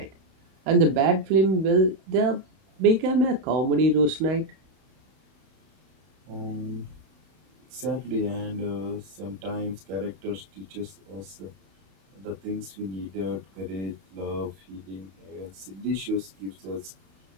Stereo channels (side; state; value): left; late; 31 ms